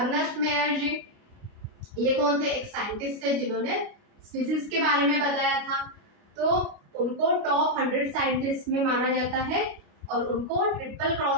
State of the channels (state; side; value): late; left; 29 ms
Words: मेयर जी, ये कौन थे, एक साइंटिस्ट थे जिन्होंने स्पीसीज के बारे में बताया था। तो उनको टॉप 100 साइंटिस्ट में माना जाता है और उनको ट्रिपल